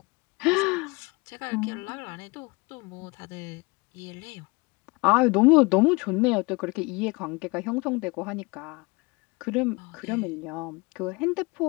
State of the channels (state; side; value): quieter; right; 26.5 dB